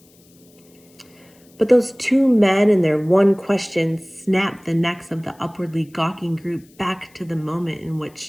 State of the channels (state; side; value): noise; left; hiss, 30 dB below the sound